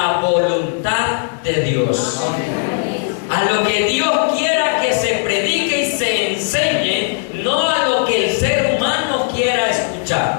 Dios. A lo que Dios quiera que se predique y se enseñe, no a lo que el ser humano quiera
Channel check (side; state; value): right; silent; digital silence